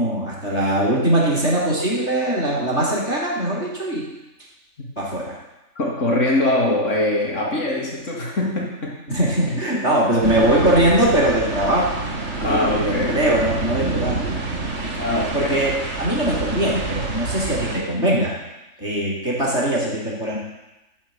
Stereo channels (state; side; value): late; right; 3.2 ms